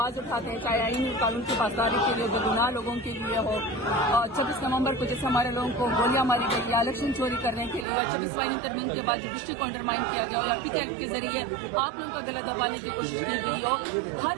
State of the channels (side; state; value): left; drops out; at 7.9 s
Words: اٹھاتے ہیں، چاہے آئین قانون کی پاسداری کے لیے بےگناہ لوگوں کے لیے ہو۔ 26 نومبر کو جیسے ہمارے لوگوں کو گولیاں ماری گئی یا الیکشن چوری کرنے کے لیے، 26 آئین ترمیم کے بعد جوڈیشری کو انڈرمائن کیا گیا یا پک ایکٹ کے ذریعے آپ لوگوں کا گلا دبانے کی کوشش کی گئی ہو، ہر